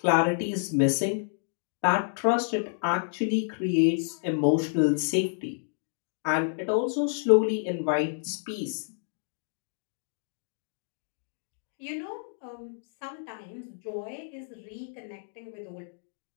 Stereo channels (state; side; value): silent; right; digital silence